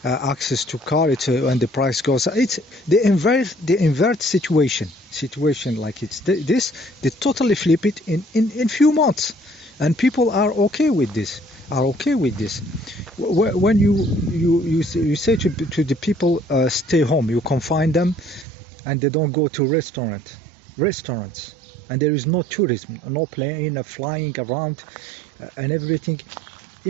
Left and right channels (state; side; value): drops out; left; at 18.4 s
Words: access to car. It's when the price goes. It's the invert situation like it's this. They totally flip it in few months, and people are okay with this. When you say to the people, stay home, you confine them, and they don't go to restaurants. And there is no tourism, no plane flying around and everything.